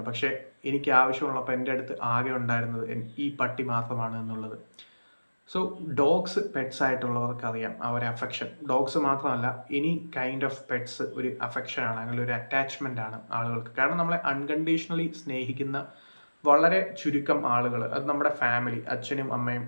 പക്ഷേ എനിക്ക് ആവശ്യമുള്ളപ്പോൾ എൻ്റെ അടുത്ത് ആകെ ഉണ്ടായിരുന്നത് ഈ പട്ടി മാത്രമാണ് എന്നുള്ളത്. സോ ഡോഗ്സ് പെറ്റ്സ് ആയിട്ടുള്ളവർക്ക് അറിയാം ആ ഒരു അഫെക്ഷൻ. ഡോഗ്സ് മാത്രമല്ല, എനി കൈൻഡ് ഓഫ് പെറ്റ്സ് ഒരു അഫെക്ഷനാണ്, അങ്ങനെ ഒരു അറ്റാച്ച്മെൻ്റ് ആണ് ആളുകൾക്ക്. കാരണം നമ്മളെ അൺകണ്ടീഷണലി സ്നേഹിക്കുന്ന വളരെ ചുരുക്കം ആളുകൾ, അത് നമ്മുടെ ഫാമിലി, അച്ഛനും അമ്മയും,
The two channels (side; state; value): both; inverted; correlation -1.00